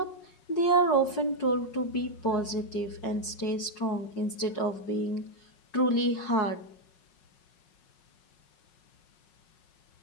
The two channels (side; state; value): right; late; 5.5 ms